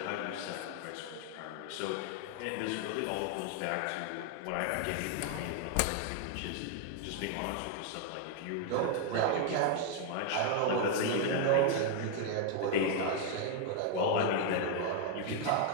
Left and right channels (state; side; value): different; both; correlation 0.00